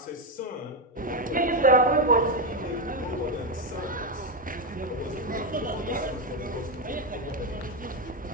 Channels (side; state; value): both; normal; correlation 0.07